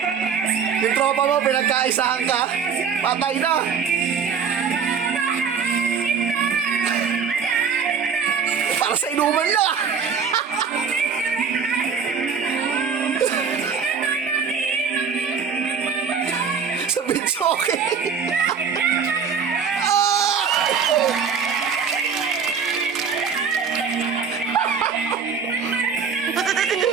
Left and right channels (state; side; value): quieter; left; 6.2 dB